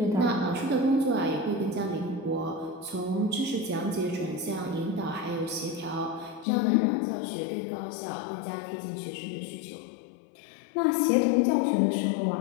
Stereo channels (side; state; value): right; drops out; at 6.5 s